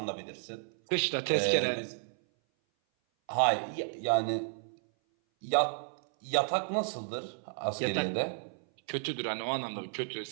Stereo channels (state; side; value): silent; left; 56 dB below the other